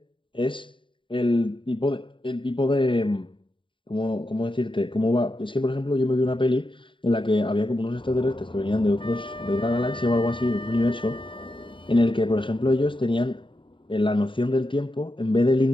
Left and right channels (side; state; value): right; late; 0.24 ms